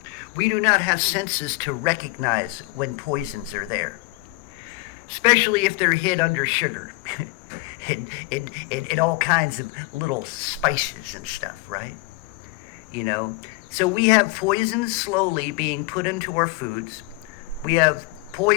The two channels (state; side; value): quieter; right; 22.0 dB